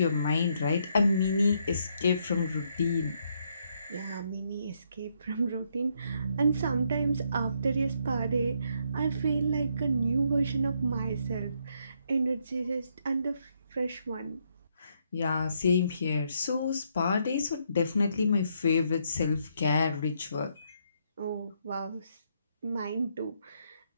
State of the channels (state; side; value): inverted; both; correlation -0.74